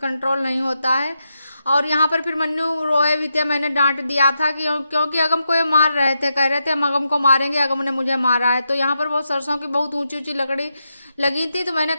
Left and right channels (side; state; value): both; inverted; correlation -0.85